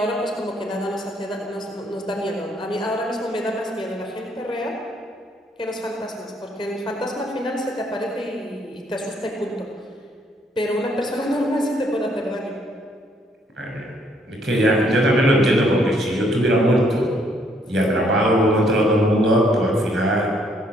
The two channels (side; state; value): both; normal; correlation 0.68